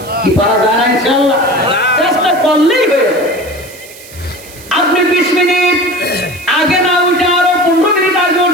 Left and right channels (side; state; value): right; noise; hiss, 19 dB below the sound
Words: কি পারা যায় না ইনশাআল্লাহ? চেষ্টা করলেই হয়ে যাবে। আপনি 20 মিনিট আগে না উঠে আরো 15 মিনিট আগে